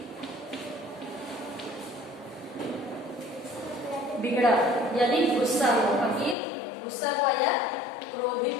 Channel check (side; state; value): right; drops out; at 6.4 s